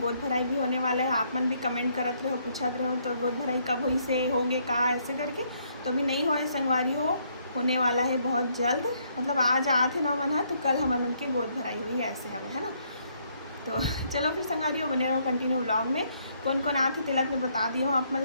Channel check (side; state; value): both; inverted; correlation -0.71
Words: गोद भराई भी होने वाला है। आप मन भी कमेंट करते रहो, पूछते रहो तो गोद भराई कब हुई से होगे कहाँ ऐसे करके। तो अभी नहीं हो संगवारी हो, होने वाला है बहुत जल्द। मतलब आज आते ना मन है तो कल हमारे मन के गोद भराई हुई ऐसे हमें, है ना। तो चलो फिर संगवारी हो बने रहो कंटिन्यू व्लॉग में। कौन कौन आते तिलक में बता दिए हो आप